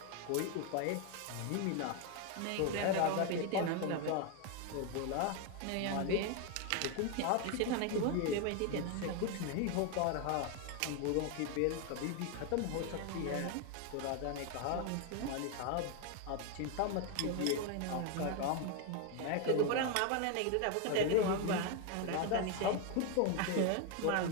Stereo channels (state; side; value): different; both; correlation 0.01